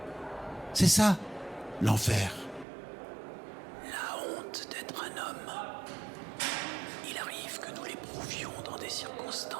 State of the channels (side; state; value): left; drops out; at 2.7 s